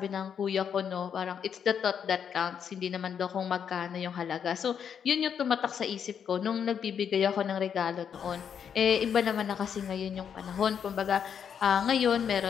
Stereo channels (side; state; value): right; quieter; 7.8 dB